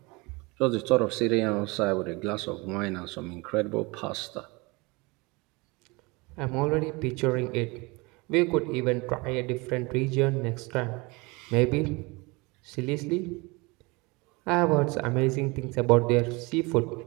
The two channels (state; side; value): quieter; left; 25.9 dB